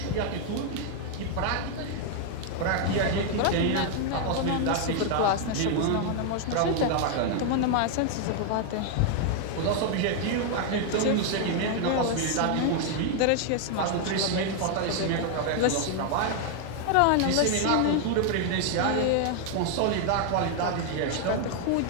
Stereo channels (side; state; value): both; different; correlation 0.00